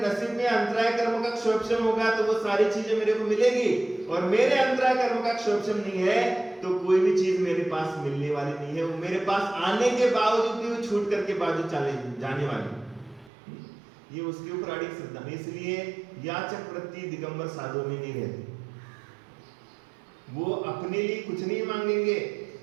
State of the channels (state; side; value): drops out; left; at 13.3 s